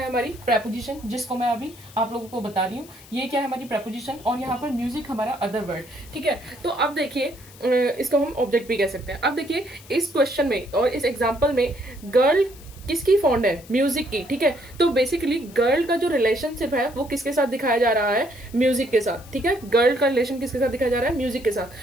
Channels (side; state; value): left; noise; hiss, 22 dB below the sound